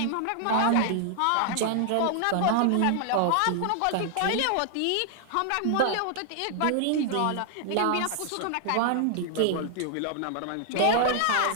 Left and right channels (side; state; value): both; different; correlation 0.00